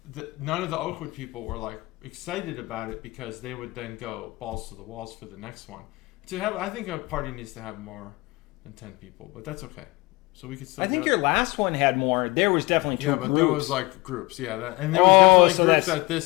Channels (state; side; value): quieter; right; 22.7 dB